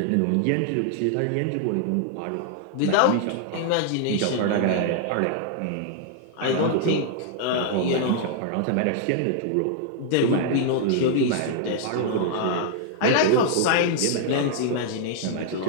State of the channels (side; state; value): both; different; correlation 0.00